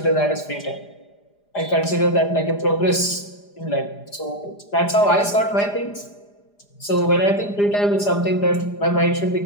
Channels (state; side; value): late; right; 4.9 ms